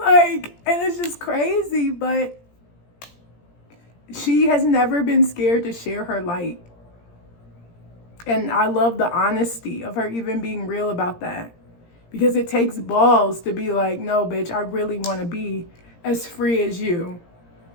and it's just crazy, but she has never been scared to share her light. And I love the honesty of her even being real about that, because it takes balls to be like, no, bitch, I really want to be as free as you.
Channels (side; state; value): right; late; 17 ms